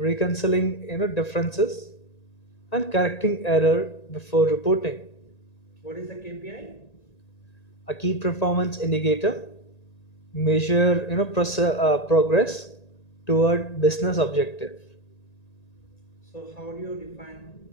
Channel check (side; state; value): right; late; 1.9 ms